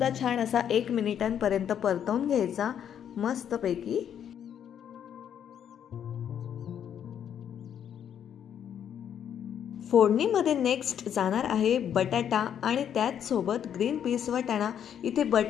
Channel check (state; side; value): quieter; right; 9.1 dB